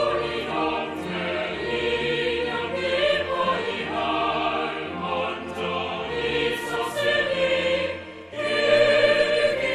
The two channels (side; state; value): both; identical; correlation 1.00